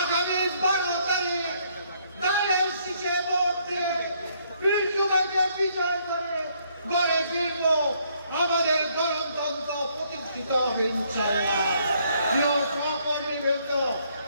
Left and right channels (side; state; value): both; inverted; correlation -0.69